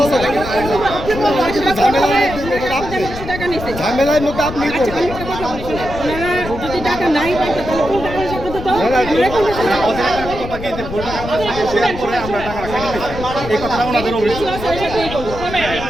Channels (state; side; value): noise; left; rumble, 9 dB below the sound